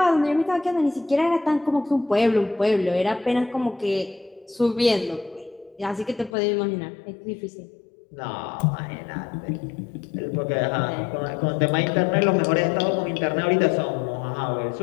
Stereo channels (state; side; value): drops out; right; at 6.4 s